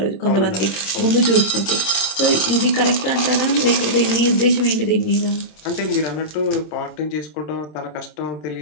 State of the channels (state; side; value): late; right; 26 ms